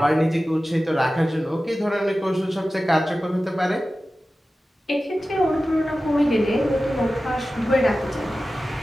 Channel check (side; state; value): both; normal; correlation 0.95